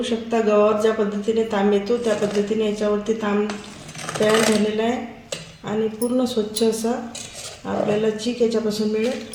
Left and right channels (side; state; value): both; identical; correlation 1.00